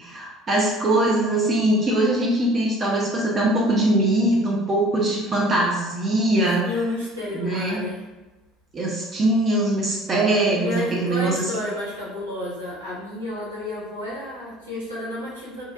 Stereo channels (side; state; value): both; normal; correlation 0.50